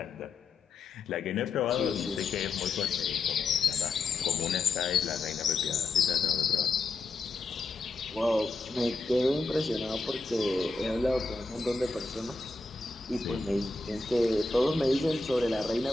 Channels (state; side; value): quieter; right; 3.6 dB